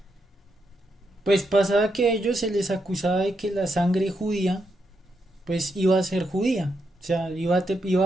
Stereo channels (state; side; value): normal; both; correlation 0.81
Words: pues pasaba que a ellos se les acusaba de que la sangre judía pues iba a ser judía, o sea, iba